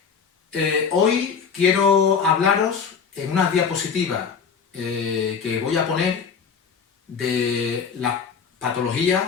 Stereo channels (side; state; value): right; quieter; 6.2 dB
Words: Hoy quiero hablaros en unas diapositivas que voy a poner de la